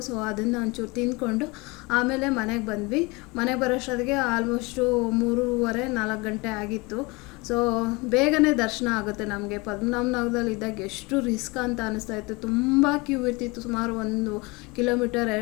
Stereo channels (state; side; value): quieter; right; 25.7 dB